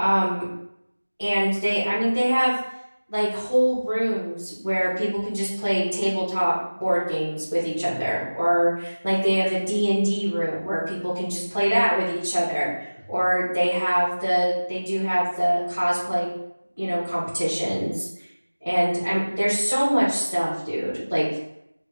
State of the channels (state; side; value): inverted; both; correlation -1.00